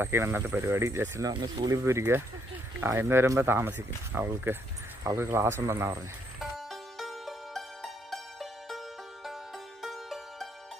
ഇന്നത്തെ പരിപാടി. ജസ്റ്റിൻ്റെ അമ്മ സ്കൂളിൽ പോയിരിക്കുക. ഇന്ന് വരുമ്പോൾ താമസിക്കും, അവൾക്ക് ക്ലാസ് ഉണ്ടെന്നാണ് പറഞ്ഞത്.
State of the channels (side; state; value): both; normal; correlation 0.71